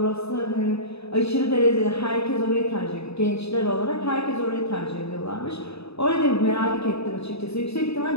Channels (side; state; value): right; late; 0.79 ms